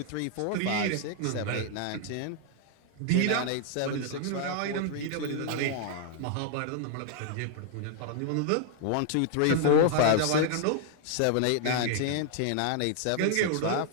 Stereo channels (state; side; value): different; both; correlation 0.00